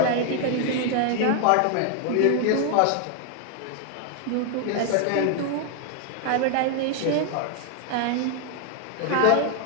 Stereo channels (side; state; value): both; different; correlation 0.00